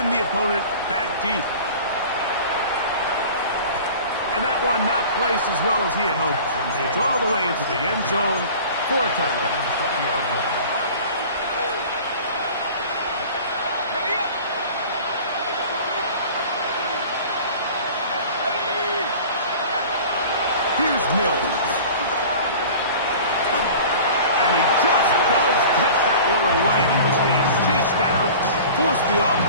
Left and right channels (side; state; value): both; inverted; correlation -0.41